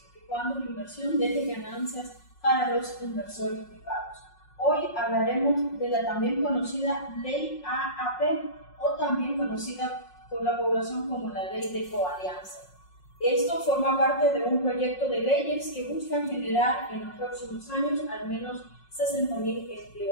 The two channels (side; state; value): right; late; 5.5 ms